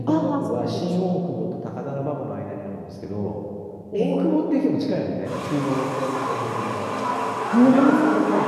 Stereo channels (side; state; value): both; identical; correlation 1.00